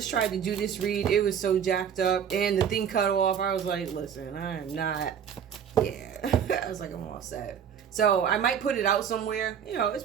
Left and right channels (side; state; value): left; quieter; 8.2 dB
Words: tried to do this read. It was so jacked up. And the thing cut off. I was like, listen, I am not. Yeah. I was like, I'm all set. So I might put it out somewhere. You know, it's